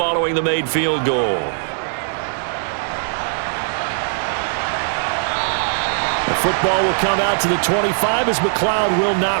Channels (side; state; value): left; silent; digital silence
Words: the made field goal. Football will come out to the 25 as McLeod will